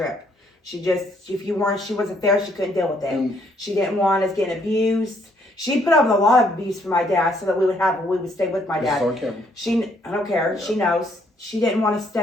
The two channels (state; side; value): normal; both; correlation 0.68